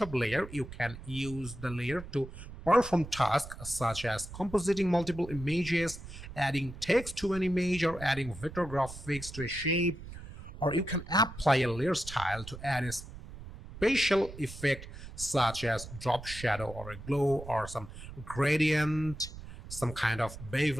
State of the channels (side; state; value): right; noise; rumble, 13 dB below the sound